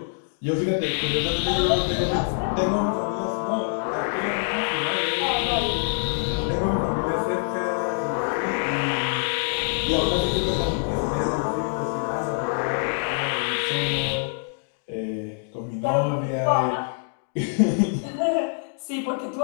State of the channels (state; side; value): silent; right; digital silence